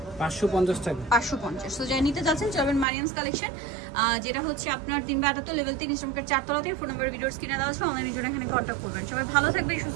550 টাকা। 550। তো যাই নিতে চাচ্ছেন চলবেন মারিয়ামস কালেকশন, যেটা হচ্ছে আপনার 3/78 লেভেল 3 ইসলামপুর 4 তলাতে। ফোন নাম্বার ভিডিওর স্ক্রিনে দেওয়া আছে, অনলাইনের জন্য এখানে কন্ট্যাক্ট করবেন। সবাই ভালো থাকবেন,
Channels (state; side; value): drops out; left; at 2.9 s